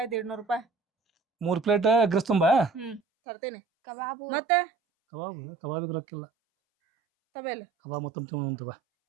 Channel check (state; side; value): drops out; left; at 3.0 s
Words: 150 ರೂಪಾಯಿ. 3 ಪ್ಲೇಟ್ ಎಗ್ರೆಸ್ ತುಂಬಾ ತರ್ತೇನೆ. ಕಬಾಬು ಮತ್ತೆ ಕಬಾಬಿಗೆ ರೊಕ್ಕಿಲ್ಲ. ತಬೇಲ್ ಕಬಾಬ್ ತುಂಬ